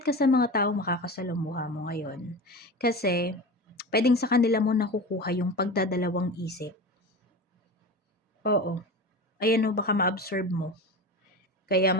ka sa mga taong makakasalumuha mo ngayon. Kasi, pwedeng sa kanila mo nakukuha yung pagdadalawang isip. Oo. Ayan o, baka ma-absorb mo. Kaya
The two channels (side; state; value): both; normal; correlation 0.28